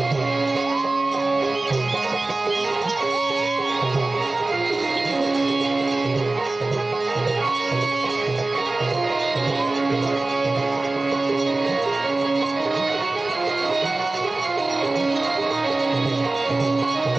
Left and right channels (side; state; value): left; quieter; 3.1 dB